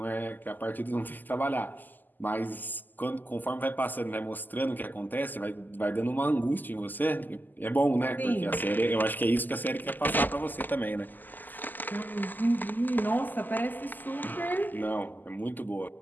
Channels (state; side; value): late; right; 0.086 ms